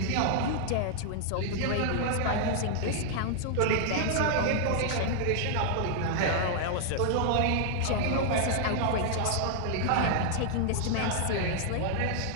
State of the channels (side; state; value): both; different; correlation -0.01